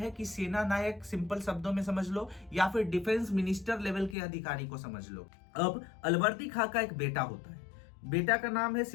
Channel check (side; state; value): right; drops out; at 4.2 s